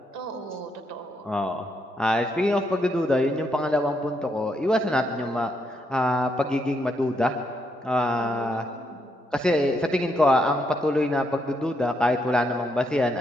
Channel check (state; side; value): normal; both; correlation 0.77